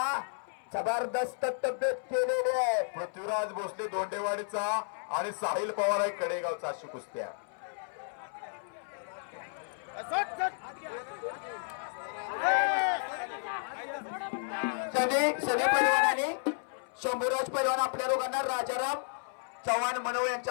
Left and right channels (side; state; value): right; silent; 56 dB below the other